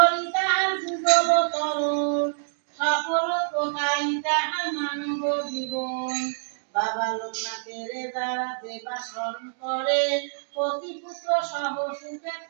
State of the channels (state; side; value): silent; left; digital silence